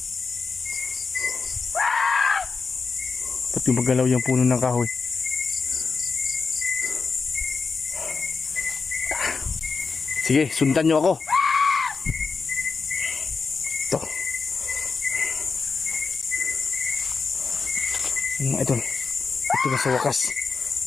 Ba't yung magalaw yung puno ng kahoy? Sige, sundan nyo ako. Ito. Ano mga idol? Ito na sa wakas.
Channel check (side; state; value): right; quieter; 4.8 dB